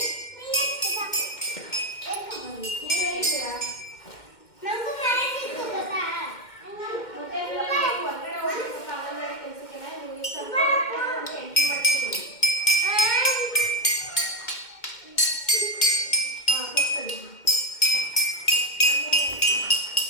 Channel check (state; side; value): late; right; 2.1 ms